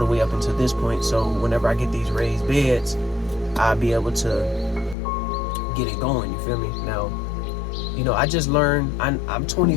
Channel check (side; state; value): right; drops out; at 5.0 s